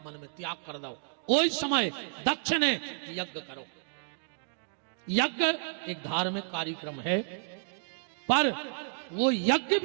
मन में त्याग कर दो। कोई समय दक्ष ने यज्ञ करो। यज्ञ एक धार्मिक कार्यक्रम है, पर वो यज्ञ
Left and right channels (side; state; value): left; silent; digital silence